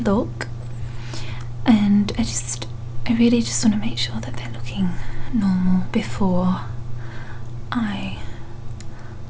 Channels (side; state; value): both; identical; correlation 1.00